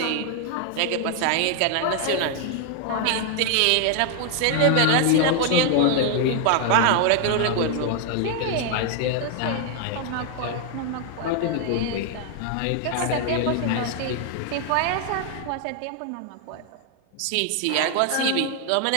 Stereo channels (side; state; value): both; different; correlation 0.00